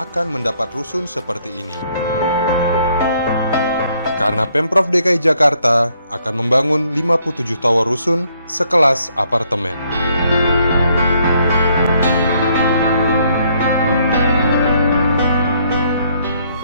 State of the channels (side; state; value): both; inverted; correlation -0.69